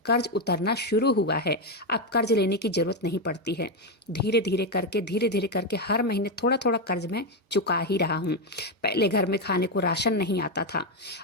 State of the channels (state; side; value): normal; both; correlation 0.08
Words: कर्ज उतरना शुरू हुआ है। अब कर्ज लेने की जरूरत नहीं पड़ती है। धीरे धीरे करके हर महीने थोड़ा थोड़ा कर्ज मैं चुका ही रहा हूँ। पहले घर में खाने को राशन नहीं आता था,